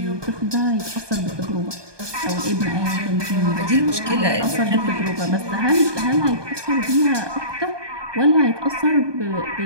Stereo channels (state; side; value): late; left; 1.2 ms